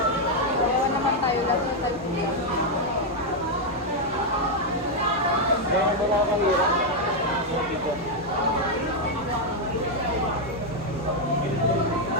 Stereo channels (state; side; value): normal; both; correlation 0.01